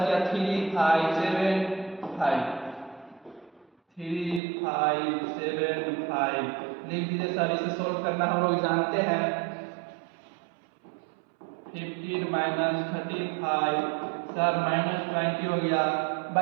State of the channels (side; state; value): left; drops out; at 4.4 s